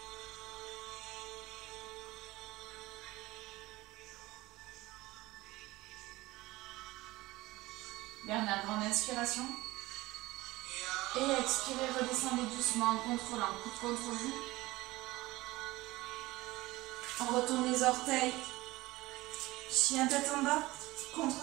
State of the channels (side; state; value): left; quieter; 19.5 dB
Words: Dernière grande inspiration. Et expirez, redescendez doucement en contrôlant, coude contre vous. On retourne les orteils. Chien tête en bas,